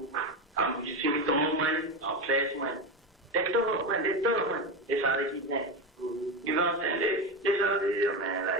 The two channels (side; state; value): both; normal; correlation 0.17